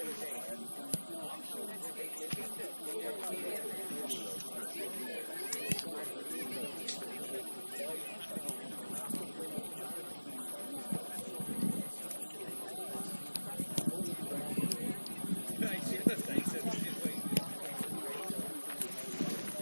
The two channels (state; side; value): inverted; both; correlation -1.00